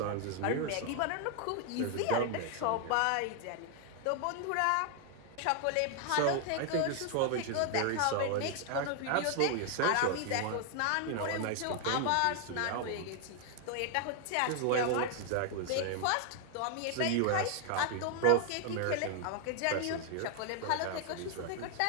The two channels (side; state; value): both; different; correlation 0.00